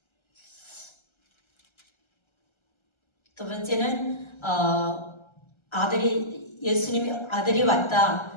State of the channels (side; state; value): right; late; 1.3 ms